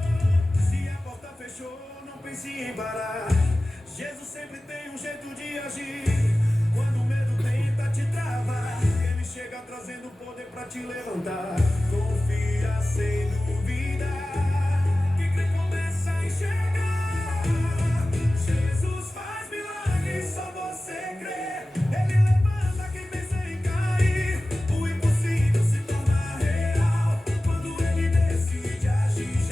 Se a porta fechou, não pense em parar. Jesus sempre tem um jeito de agir. Quando o medo tenta te travar, ele chega trazendo poder pra te levantar. Confia sem dúvida. Quem crê começa a enxergar. Jesus faz milagres, só você crê. Ele levanta quem pensa em cair. O impossível se torna real quando ele decide agir.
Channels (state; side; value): normal; both; correlation 0.96